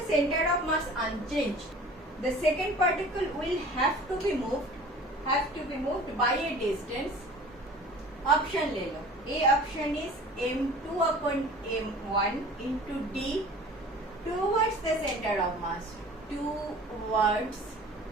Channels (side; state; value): both; normal; correlation 0.44